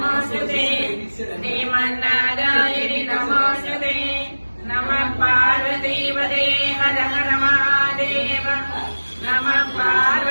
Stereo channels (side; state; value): both; inverted; correlation -1.00